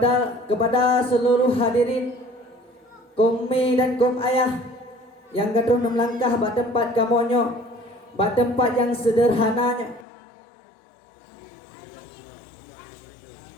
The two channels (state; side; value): drops out; right; at 10.1 s